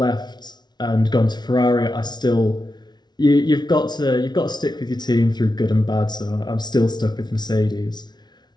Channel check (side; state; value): right; late; 0.20 ms